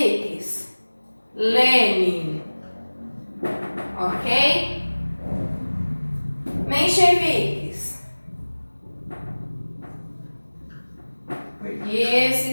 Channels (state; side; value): inverted; both; correlation -1.00